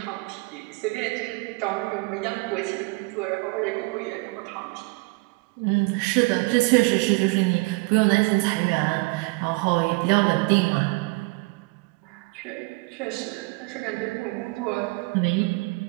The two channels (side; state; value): left; quieter; 26.2 dB